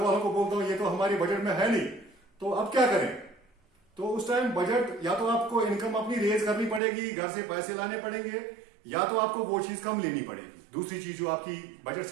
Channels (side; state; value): left; drops out; at 6.8 s